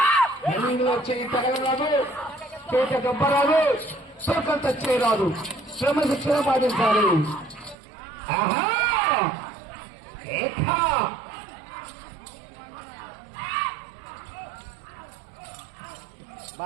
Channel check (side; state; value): left; drops out; at 7.8 s